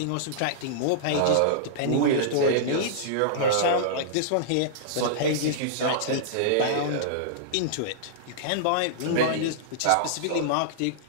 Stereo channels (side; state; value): both; different; correlation -0.02